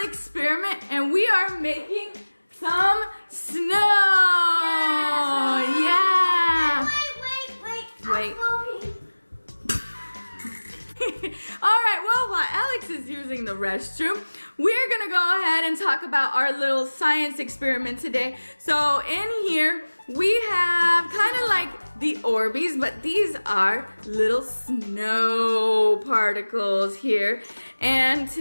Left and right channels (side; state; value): both; inverted; correlation -1.00